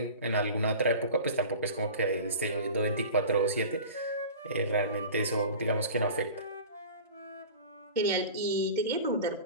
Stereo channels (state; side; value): inverted; both; correlation -0.37